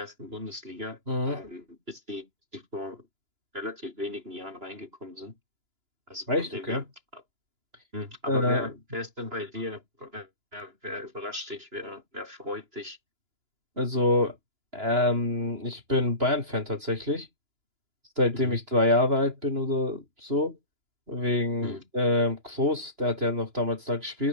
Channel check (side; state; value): left; late; 2.9 ms